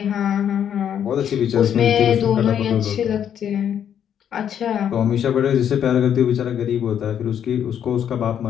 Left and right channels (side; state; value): right; quieter; 9.1 dB